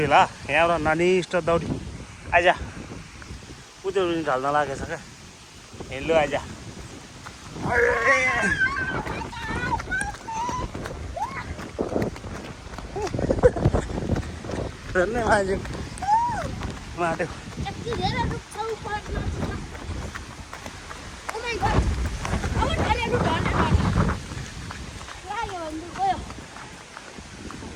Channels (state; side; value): identical; both; correlation 1.00